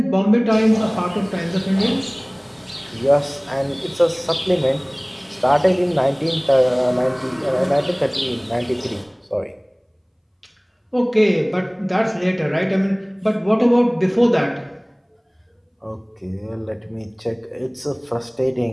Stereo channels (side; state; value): both; identical; correlation 1.00